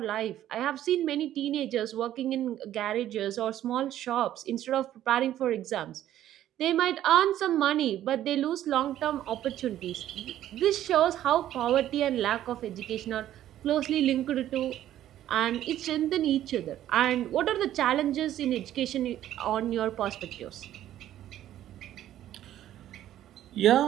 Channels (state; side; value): quieter; left; 12.3 dB